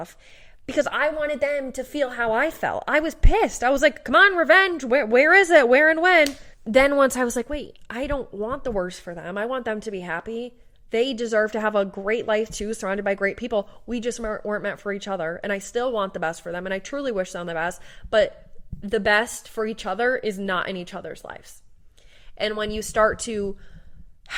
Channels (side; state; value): both; identical; correlation 1.00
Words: because I wanted them to feel how I felt. I was pissed. I was like, come on, revenge. Where is it? Where and when? Then once I was like, wait, I don't want the worst for them. I want them to be happy. They deserve to have a great life too, surrounded by great people. We just weren't meant for each other. And I still want the best for them. And I truly wish them the best. But the best for each other is not in each other's lives. And when you start to